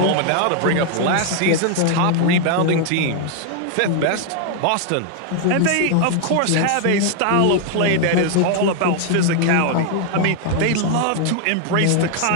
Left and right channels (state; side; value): different; both; correlation 0.00